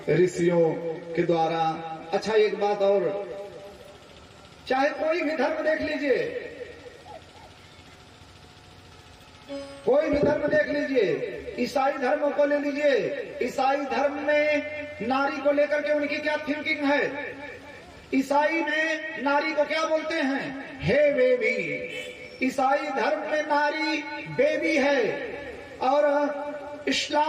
ऋषियों के द्वारा। अच्छा, एक बात और, चाहे कोई भी धर्म देख लीजिए, कोई भी धर्म देख लीजिए, ईसाई धर्म को ले लीजिए, ईसाई धर्म में नारी को लेकर के उनकी क्या थिंकिंग है? ईसाई में नारी को क्या बोलते हैं? हे बेबी। ईसाई धर्म में नारी बेबी है, और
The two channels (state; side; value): identical; both; correlation 1.00